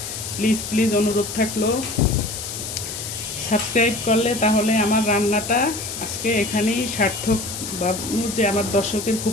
প্লিজ প্লিজ অনুরোধ থাকলো। সাবস্ক্রাইব করলে তাহলে আমার রান্নাটা আজকে এখানেই সার্থক। ভাববো যে আমার দর্শকের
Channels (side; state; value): left; noise; hiss, 7 dB below the sound